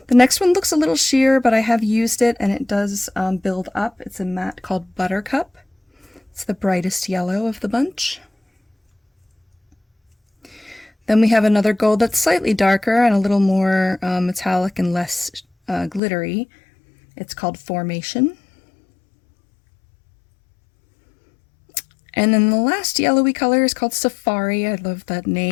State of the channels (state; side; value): drops out; right; at 16.0 s